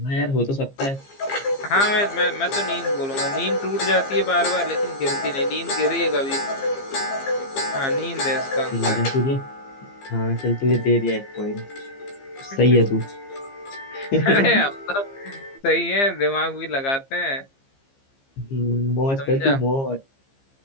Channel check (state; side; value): late; right; 15 ms